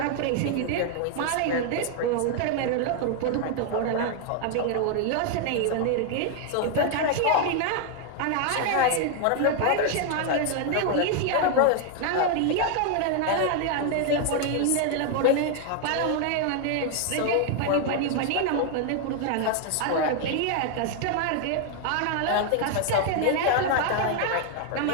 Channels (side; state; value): both; different; correlation 0.00